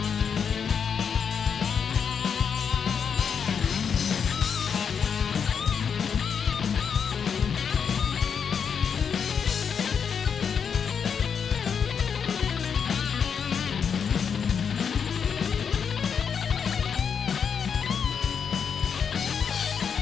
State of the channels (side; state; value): right; quieter; 6.9 dB